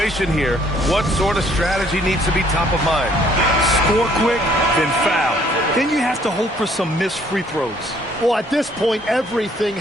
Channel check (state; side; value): normal; both; correlation 0.63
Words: here, what sort of strategy needs to be top of mind? Score quick, then foul. Then you have to hope for some missed free throws. Well, at this point, everything